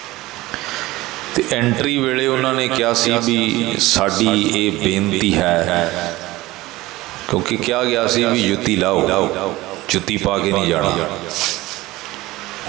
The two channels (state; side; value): quieter; left; 18.8 dB